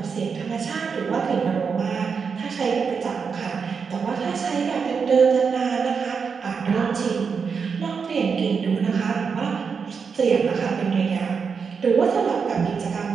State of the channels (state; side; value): quieter; left; 5.8 dB